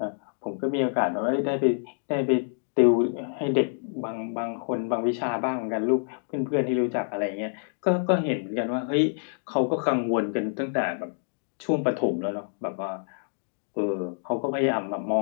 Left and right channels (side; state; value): right; silent; digital silence